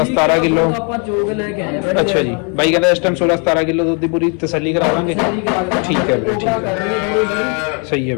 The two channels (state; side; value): quieter; right; 36.8 dB